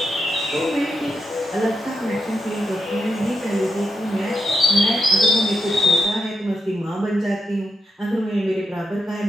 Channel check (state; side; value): normal; both; correlation 0.84